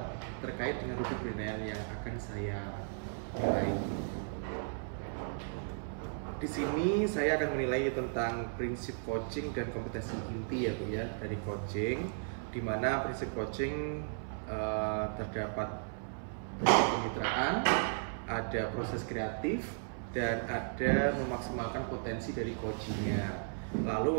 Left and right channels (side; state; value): left; silent; 54 dB below the other